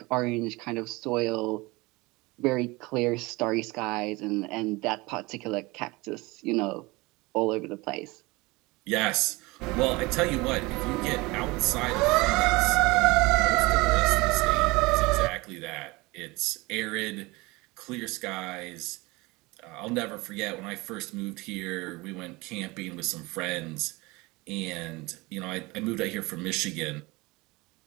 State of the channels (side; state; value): left; quieter; 23.4 dB